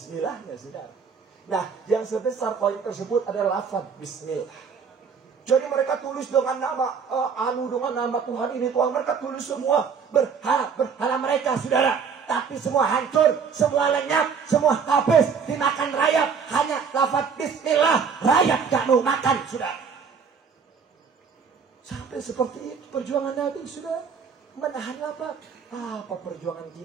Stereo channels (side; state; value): left; quieter; 6.1 dB